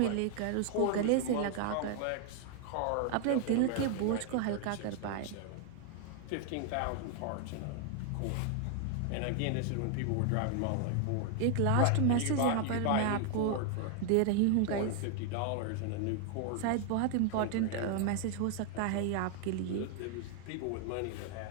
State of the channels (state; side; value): different; both; correlation 0.00